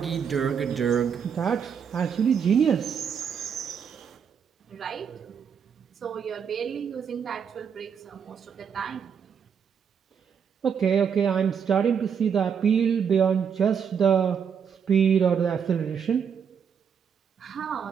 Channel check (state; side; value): quieter; left; 7.2 dB